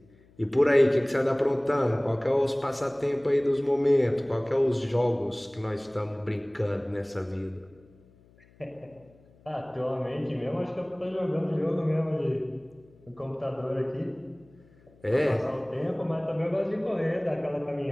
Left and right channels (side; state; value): left; noise; hum, 28 dB below the sound